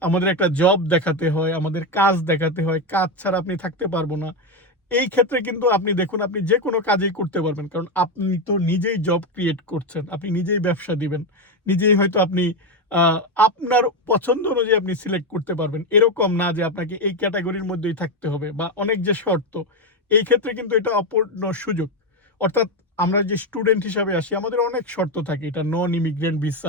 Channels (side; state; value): both; normal; correlation 0.10